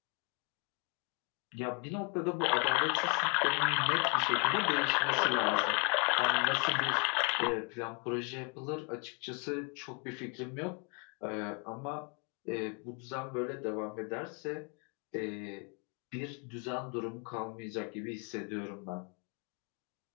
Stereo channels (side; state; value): right; quieter; 33.5 dB